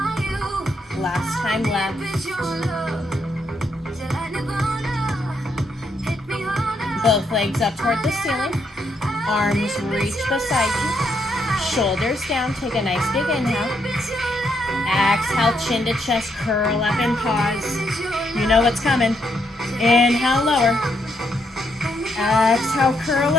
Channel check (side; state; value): both; normal; correlation 0.76